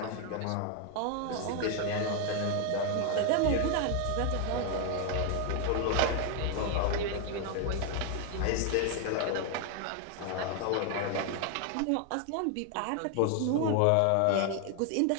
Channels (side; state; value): both; different; correlation 0.01